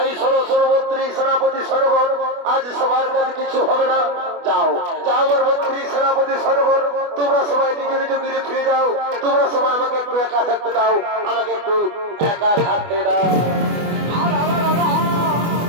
শোনো শোনো মন্ত্রী সেনাপতি সনগণ, আজ সবার কাছে কিছু হবে না। যাও যাও আমার মন্ত্রী সেনাপতি সনগণ, তোমরা সবাই নিজের নিজ গিরে ফিরে যাও। তোমরা সবাই আমাকে একটু একা থাকতে দাও, আমাকে একটু একা থাকতে দাও।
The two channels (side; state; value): left; late; 24 ms